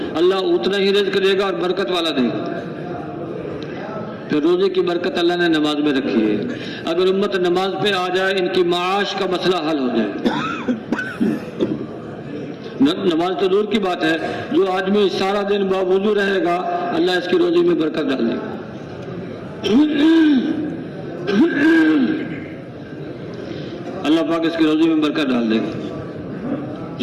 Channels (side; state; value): both; identical; correlation 1.00